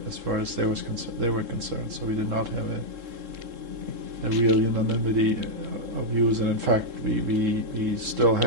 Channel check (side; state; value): left; late; 3.7 ms